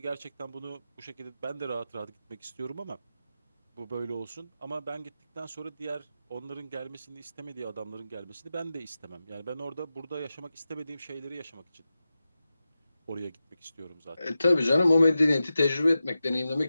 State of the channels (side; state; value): both; inverted; correlation -0.92